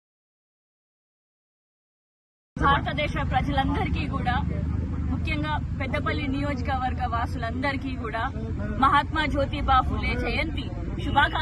ప్రజలందరికీ కూడా, ముఖ్యంగా పెద్దపల్లి నియోజకవర్గ వాసులందరికీ కూడా మహాత్మా జ్యోతిబా ఫులే జయంతి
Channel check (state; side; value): identical; both; correlation 1.00